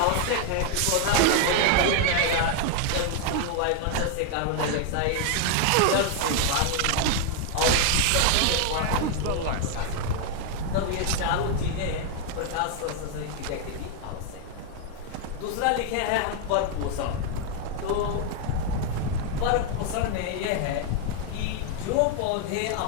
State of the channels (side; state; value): both; different; correlation 0.00